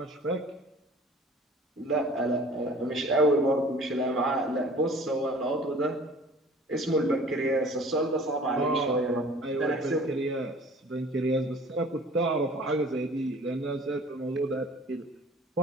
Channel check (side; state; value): both; normal; correlation 0.48